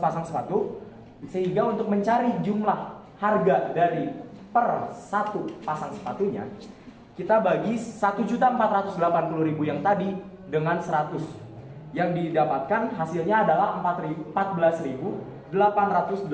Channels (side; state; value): both; identical; correlation 1.00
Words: Sehingga untuk mencari jumlah harga dari per 1 pasang sepatunya kita bagi 1.480.000 yang tadi dengan 100. Yang didapatkan hasilnya adalah